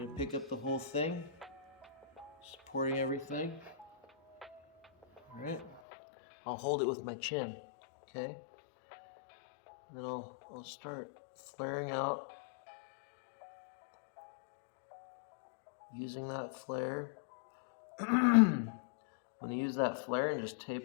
gonna pick up the whole thing, supporting everything. All right. I'll hold it with my chin. Okay. And then I'll start flaring out using that flare. I'm going to use that flare and just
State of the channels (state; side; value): drops out; right; at 5.8 s